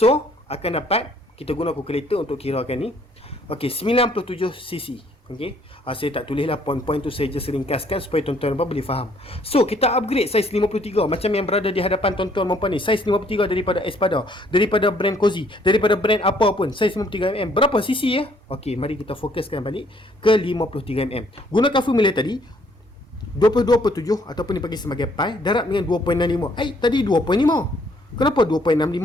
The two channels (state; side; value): normal; both; correlation 0.64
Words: akan dapat, kita guna kalkulator untuk kirakan ni. Okey, 97cc. Okey, saya tak tulislah poin-poin tu, saya just ringkaskan supaya tuan-tuan dan puan boleh faham. So kita upgrade saiz 53 macam yang berada di hadapan tuan-tuan dan puan ni, saiz 53 daripada Espada, daripada brand Cozy, daripada brand apa pun, saiz 53mm. Berapa cc ya? Okey, mari kita fokuskan balik ke 53mm. Gunakan formula tadi 22/7 ataupun dipanggil sebagai pi darab dengan 2.65. Tadi 2.5. Kenapa